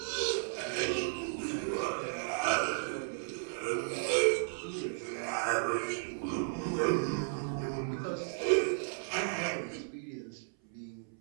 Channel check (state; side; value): silent; left; 55 dB below the other